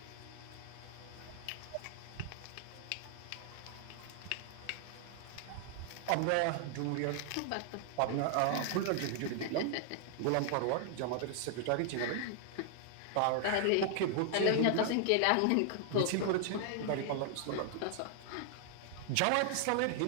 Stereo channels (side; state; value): both; different; correlation 0.00